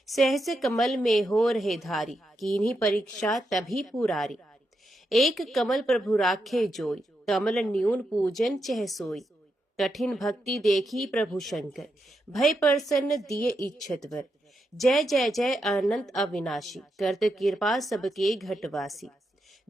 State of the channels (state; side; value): normal; both; correlation 0.84